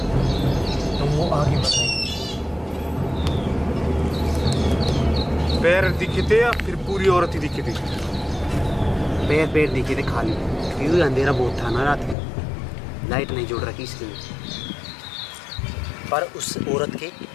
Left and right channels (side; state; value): right; drops out; at 12.2 s